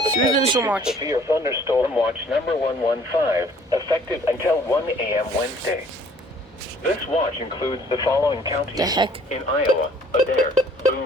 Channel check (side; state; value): both; normal; correlation 0.56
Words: Through the has issued watch. severe thunderstorm watch number 115, effective until 1 a.m. Wednesday. This watch includes the following counties The heck? in Iowa: Adair,